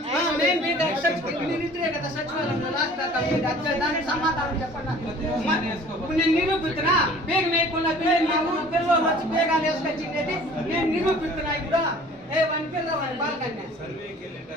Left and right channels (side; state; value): both; normal; correlation 0.49